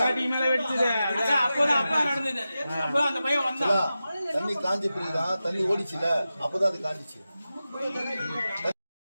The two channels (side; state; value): both; inverted; correlation -0.93